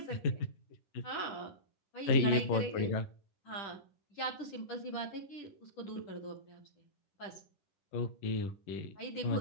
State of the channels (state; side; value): late; right; 10 ms